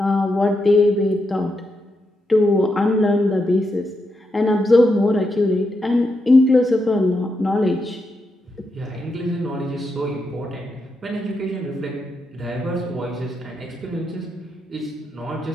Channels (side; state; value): both; normal; correlation 0.84